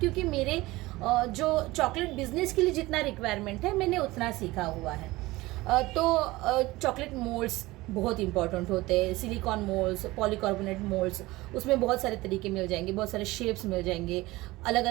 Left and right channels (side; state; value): left; quieter; 19.8 dB